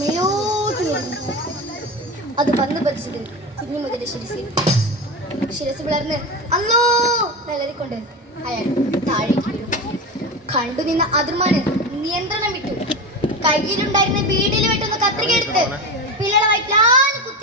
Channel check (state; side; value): normal; both; correlation 0.22